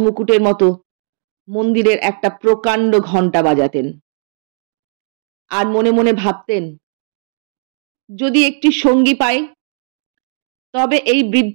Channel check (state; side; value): silent; left; digital silence